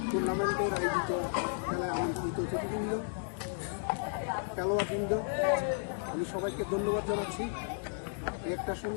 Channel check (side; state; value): right; silent; digital silence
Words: টুর্নামেন্টের আয়োজিত খেলায় আমন্ত্রিত অতিথিবৃন্দ, খেলোয়াড়বৃন্দ, আমি সবাইকে ধন্যবাদ জানাচ্ছি। একটা